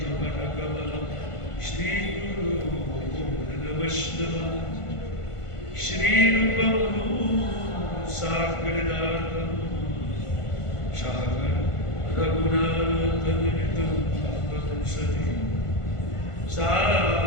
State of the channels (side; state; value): right; late; 1.5 ms